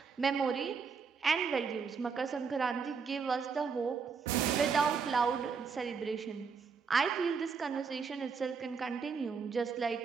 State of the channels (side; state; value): left; quieter; 5.6 dB